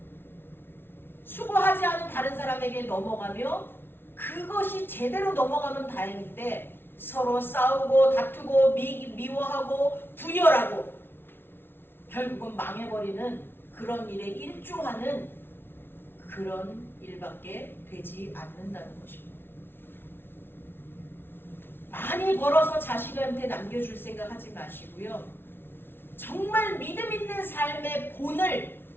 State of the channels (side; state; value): right; late; 0.11 ms